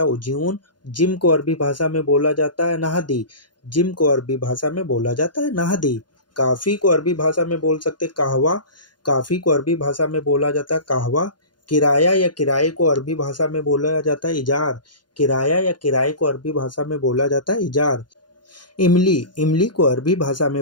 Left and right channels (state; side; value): late; right; 0.71 ms